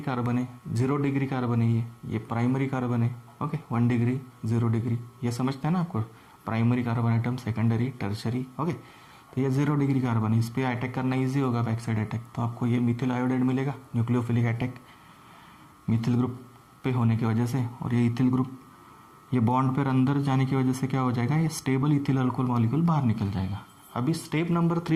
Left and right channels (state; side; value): identical; both; correlation 1.00